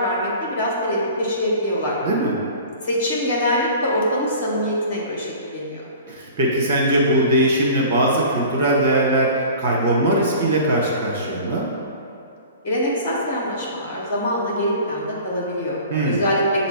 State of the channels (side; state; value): both; inverted; correlation -0.42